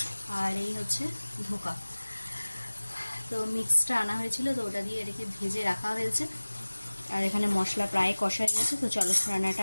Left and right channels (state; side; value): inverted; both; correlation -1.00